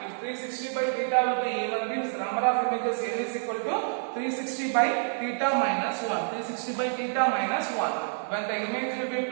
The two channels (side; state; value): left; silent; digital silence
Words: If 360 by theta will be even, means the number of images n is equal to 360 by theta minus 1. 360 by theta minus 1. When the image will be